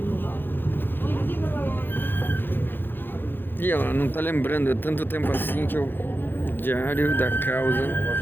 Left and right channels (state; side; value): late; right; 0.098 ms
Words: E ela não tá lembrando, é tanto tempo assim que eu... Diário da Causa.